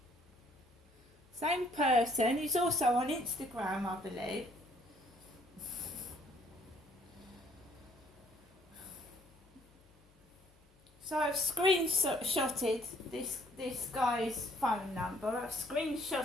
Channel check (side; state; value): both; normal; correlation 0.62